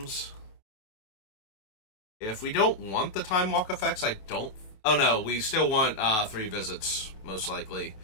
If we don't want the Time Walk effects, I don't... Oh no, we still want 3 visits, most likely.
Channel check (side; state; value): right; late; 27 ms